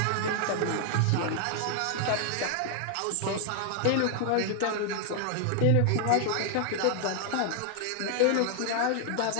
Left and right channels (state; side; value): different; both; correlation 0.00